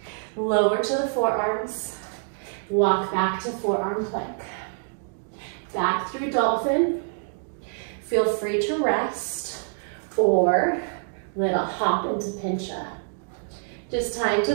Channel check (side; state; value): left; silent; digital silence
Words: Lower to the forearms. Walk back to forearm plank. Back through dolphin. Feel free to rest or little hop into pincha. Just time